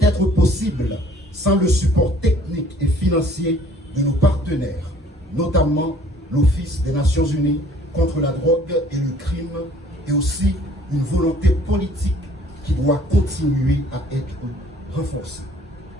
être possible sans le support technique et financier de nos partenaires, notamment l'Office des Nations Unies contre la drogue et le crime et aussi une volonté politique qui doit continuer à être renforcée.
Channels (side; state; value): both; normal; correlation 0.56